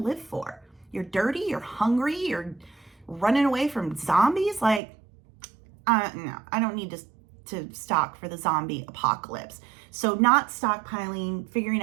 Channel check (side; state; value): left; drops out; at 4.8 s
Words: for? You're dirty, you're hungry, you're running away from zombies? Like, no, I don't need to stock for the zombie apocalypse. So not stockpiling, figuring